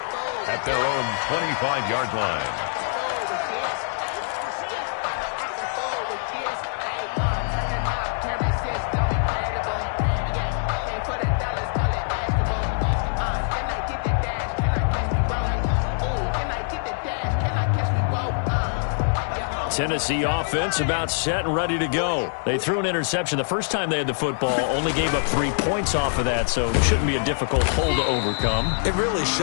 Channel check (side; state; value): right; silent; digital silence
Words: At their own 25-yard line. Tennessee offense about set and ready to go. They threw an interception the first time they had the football, only gave up 3 points off of that, so it shouldn't be a difficult hole to overcome. It really